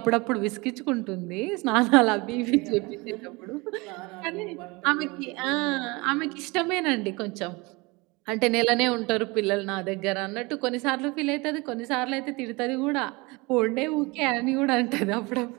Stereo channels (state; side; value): quieter; left; 25.4 dB